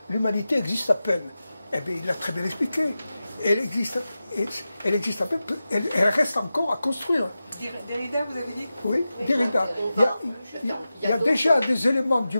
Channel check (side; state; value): both; inverted; correlation -0.94